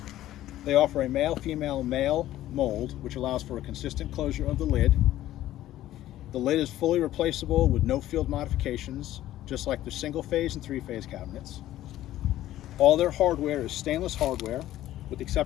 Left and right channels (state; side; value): quieter; right; 13.9 dB